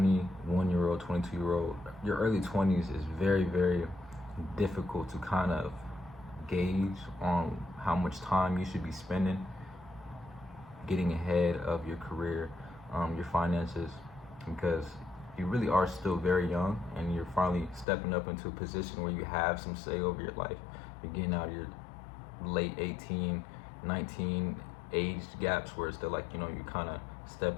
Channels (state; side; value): drops out; right; at 17.9 s